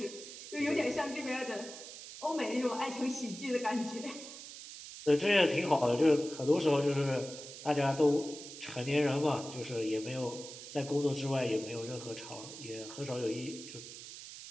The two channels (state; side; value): noise; right; hiss, 12 dB below the sound